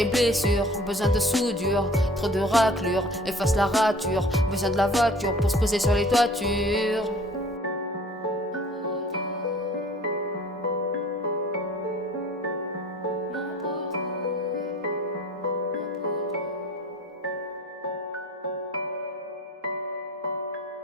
blessure, besoin de soudure, trop de raclures, efface la rature, besoin de la voiture pour se poser sur les toitures.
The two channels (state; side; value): normal; both; correlation 0.48